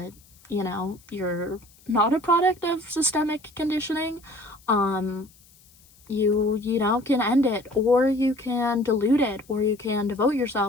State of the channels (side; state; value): left; noise; hiss, 28 dB below the sound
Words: you're not a product of systemic conditioning. You can end it, or you can dilute it, or you can devote